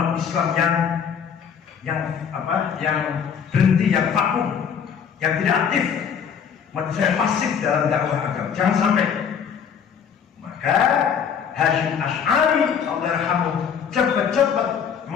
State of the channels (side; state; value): right; quieter; 7.4 dB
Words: Islam yang berhenti, yang vakum, yang tidak aktif, umat Islam pasif dalam dakwah agama. Jangan sampai. Maka Hasyim Asy'ari Allahyarhamuh cepat-cepat